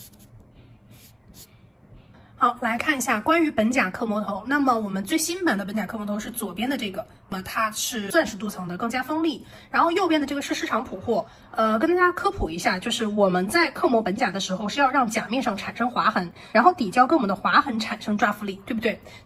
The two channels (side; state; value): both; identical; correlation 1.00